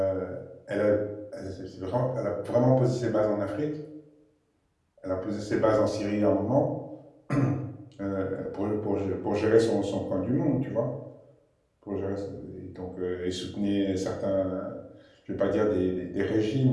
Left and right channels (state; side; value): identical; both; correlation 1.00